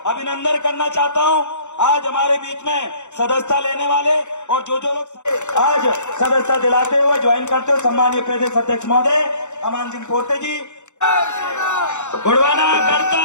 अभिनंदन करना चाहता हूँ आज हमारे बीच में सदस्यता लेने वाले और जो लोग आज सदस्यता दिलाते हुए ज्वाइन करते हो, सम्मानीय प्रदेश अध्यक्ष महोदय अमान सिंह पोर्ते जी, गुड़वाना गणतंत्र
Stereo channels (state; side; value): late; right; 0.84 ms